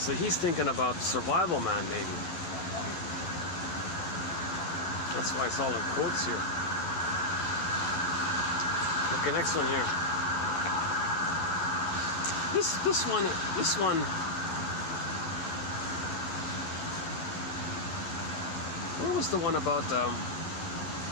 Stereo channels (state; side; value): late; right; 11 ms